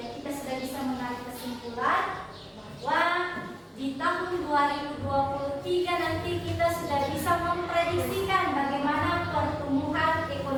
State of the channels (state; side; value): identical; both; correlation 1.00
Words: kita sudah bisa menarik kesimpulan bahwa di tahun 2023 nanti kita sudah bisa memprediksikan bagaimana pertumbuhan